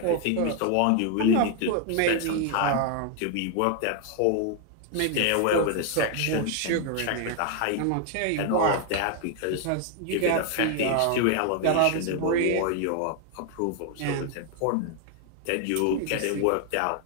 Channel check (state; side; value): different; both; correlation 0.00